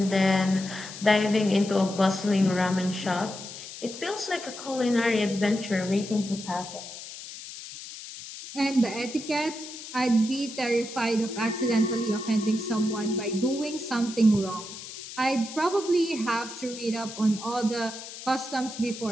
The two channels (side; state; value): left; noise; hiss, 12 dB below the sound